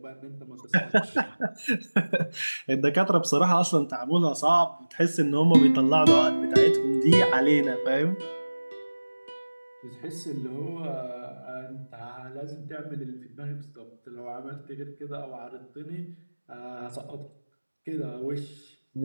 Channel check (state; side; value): inverted; both; correlation -1.00